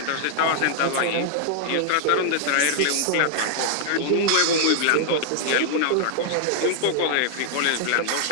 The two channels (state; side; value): different; both; correlation -0.01